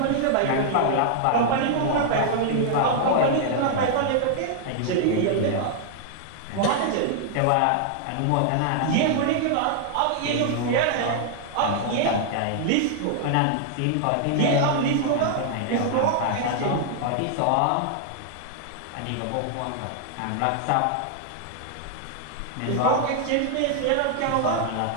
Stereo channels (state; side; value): different; both; correlation 0.00